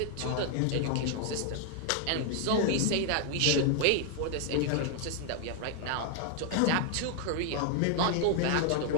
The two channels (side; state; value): both; different; correlation 0.00